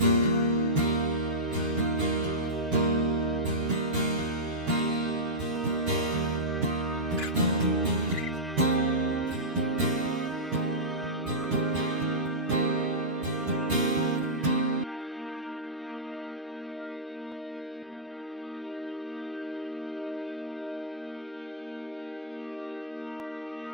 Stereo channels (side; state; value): both; normal; correlation -0.12